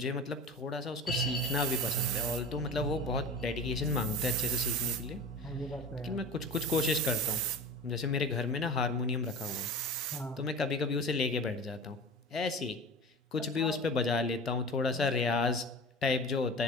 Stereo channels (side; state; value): both; normal; correlation 0.35